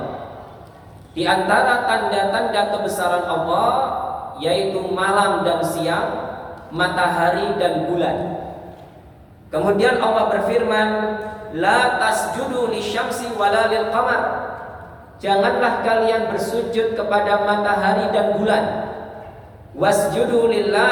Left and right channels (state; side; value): identical; both; correlation 1.00